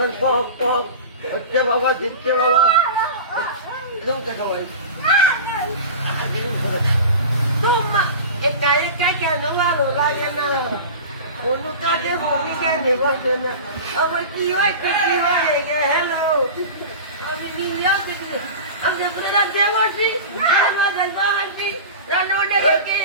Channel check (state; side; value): inverted; both; correlation -0.32